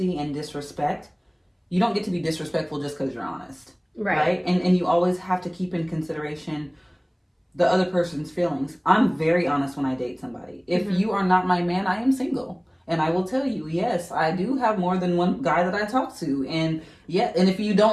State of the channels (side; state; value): both; identical; correlation 1.00